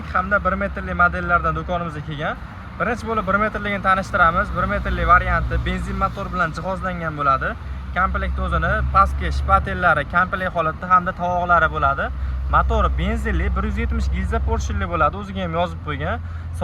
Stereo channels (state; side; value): identical; both; correlation 1.00